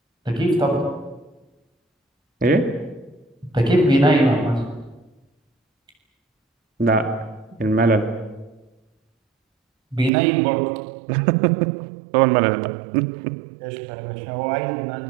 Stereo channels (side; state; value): left; drops out; at 10.1 s